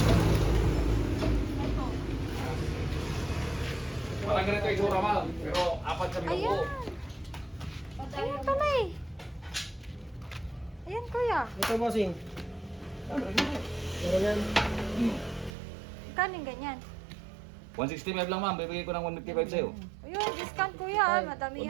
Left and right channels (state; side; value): drops out; left; at 15.6 s